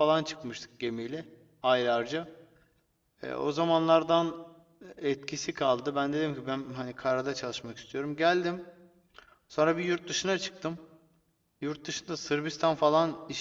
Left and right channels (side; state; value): both; identical; correlation 1.00